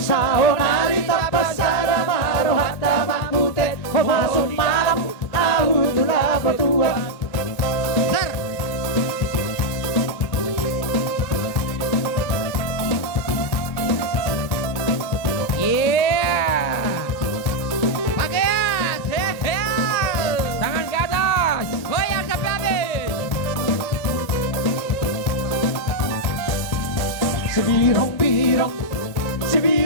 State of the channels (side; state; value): right; late; 1.9 ms